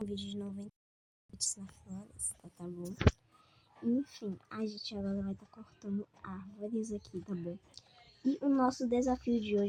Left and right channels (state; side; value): identical; both; correlation 1.00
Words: vídeo de 90 minutos na floresta, tá bom? Enfim, a gente agora vai estar cortando árvores aqui, tá bom? E o nosso desafio de